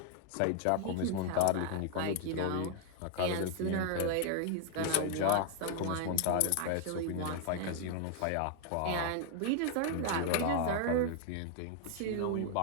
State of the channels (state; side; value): different; both; correlation 0.00